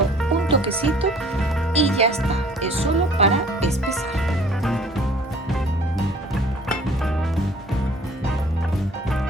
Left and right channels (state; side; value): normal; both; correlation 0.53